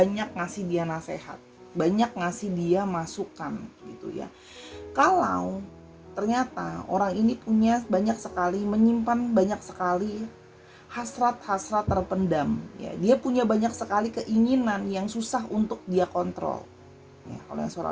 ngasih dia nasihat, banyak ngasih dia masukan gitu ya. Kalau ternyata orang ini punya banyak sekali, menyimpan banyak sekali hasrat-hasrat terpendam ya. Dia punya banyak sekali keinginan yang susah untuk dia kontrol. Ya, kalau yang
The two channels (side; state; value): both; identical; correlation 1.00